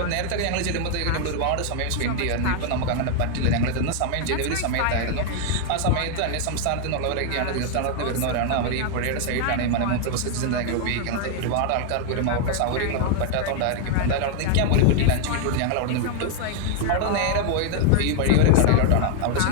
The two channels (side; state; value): both; different; correlation 0.00